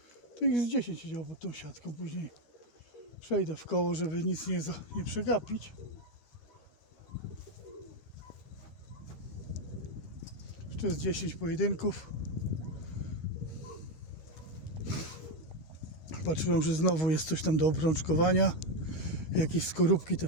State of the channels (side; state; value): right; late; 13 ms